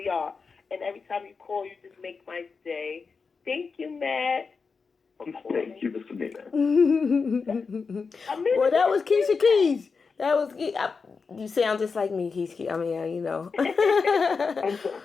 are. And every time you call, you just make my day. Thank you, Matt. Thank you, Miss Amina. Well, that was Keisha Keys. That was you sound just like me, Keisha. I mean, you know. I'm sorry.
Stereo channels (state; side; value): quieter; right; 5.0 dB